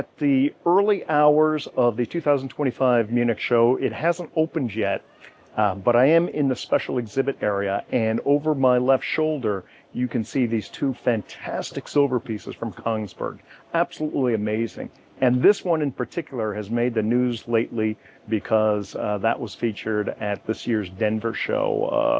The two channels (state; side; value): identical; both; correlation 1.00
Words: the early hours of the 2025 Munich show. It hasn't opened yet, but I am in the special exhibit area, and over my left shoulder, you can see these two fantastic silver pieces from Kongsberg. Absolutely amazing. And this one in particular has made the news lately because that was featured at this year's Denver